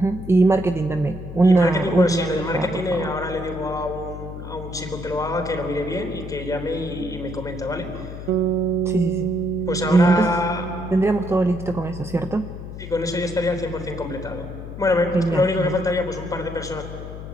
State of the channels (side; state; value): left; noise; hum, 10 dB below the sound